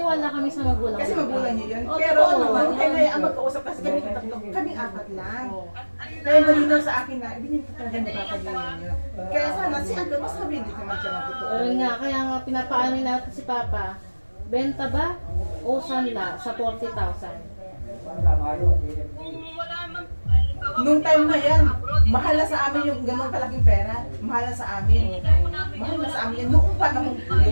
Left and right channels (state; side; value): inverted; both; correlation -1.00